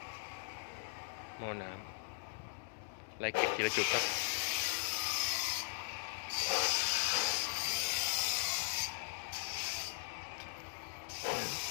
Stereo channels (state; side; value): silent; right; digital silence